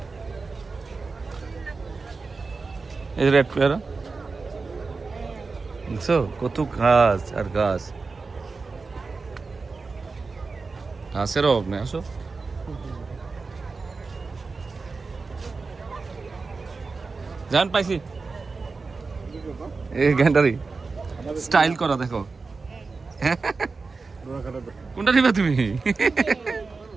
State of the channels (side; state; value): left; quieter; 4.2 dB